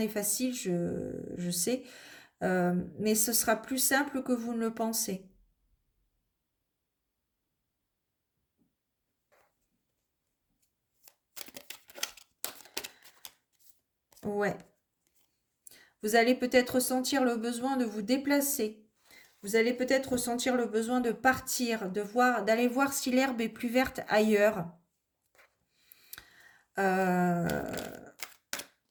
facile, je sais, mais ce sera plus simple que vous ne le pensez. Ouais. Vous allez peut-être ressentir le besoin de vous déplacer. Vous allez peut-être ressentir le besoin de partir, d'aller voir si l'herbe est plus verte ailleurs.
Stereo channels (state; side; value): identical; both; correlation 1.00